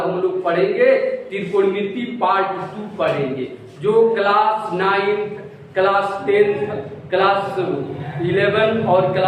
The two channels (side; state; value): both; identical; correlation 1.00